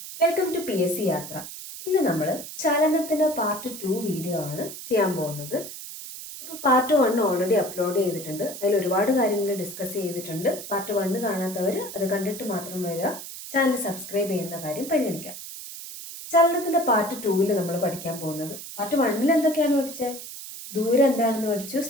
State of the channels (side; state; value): right; noise; hiss, 11 dB below the sound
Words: welcome to PSC യാത്ര. ഇന്ന് നമ്മൾ ചലനത്തിൻ്റെ പാർട്ട് 2 വീഡിയോ ആണ് ചെയ്യാൻ പോകുന്നത്. അപ്പോൾ പാർട്ട് 1 ഓൾറെഡി അപ്ലോഡ് ചെയ്തിട്ടുണ്ട്. അതിൽ ഒരുപാട് കാര്യങ്ങൾ ഡിസ്കസ് ചെയ്തിട്ടുണ്ട്. പാർട്ട് 1 കാണാത്തവർ അത് കണ്ടിട്ട് മാത്രം വരിക. ചാനൽ സബ്സ്ക്രൈബ് ചെയ്യുന്ന കാര്യം പരിഗണിക്കുക. ചലനത്തിൻ്റെ പാർട്ട് 2 നമ്മൾ പഠിക്കാൻ പോകുന്നത്, പാർട്ട് 1 എന്തൊക്കെയാണ് പഠിച്ചത്? ദൂരം എന്താണെന്ന് പഠിച്ചു,